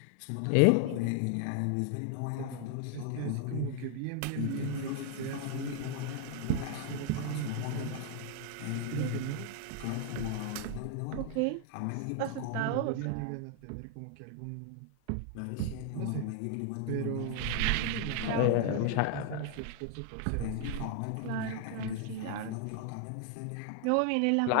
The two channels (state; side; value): different; both; correlation 0.00